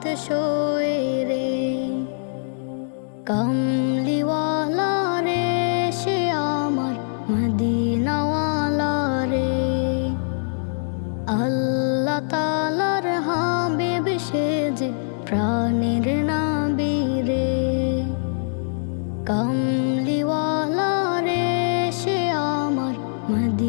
সয়ে রে। কামলিওয়ালা রে সে আমার মদিনাওয়ালা রে, আল্লাহ তাআলার হাবিব সে যে প্রাণের নবী রে। কামলিওয়ালা রে সে আমার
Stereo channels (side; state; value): right; silent; digital silence